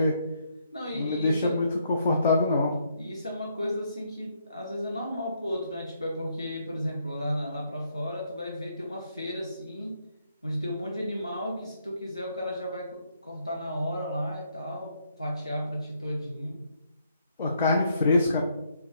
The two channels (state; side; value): inverted; both; correlation -0.73